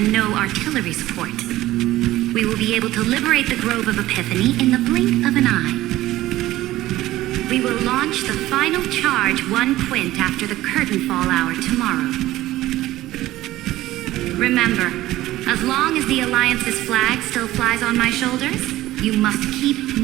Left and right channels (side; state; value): left; quieter; 16.0 dB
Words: no artillery support. We will be able to liberate the Grove of Epiphany in the blink of an eye. We will launch the final charge 1 quint after the curtain fall hour tomorrow. Remember, as long as the Alliance's flag still flies on my shoulders, you must keep